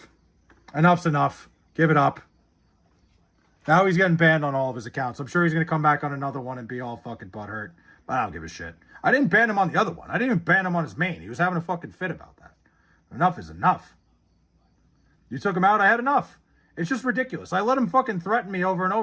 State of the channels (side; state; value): both; identical; correlation 1.00